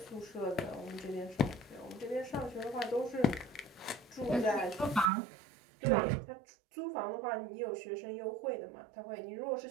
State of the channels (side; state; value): left; drops out; at 5.1 s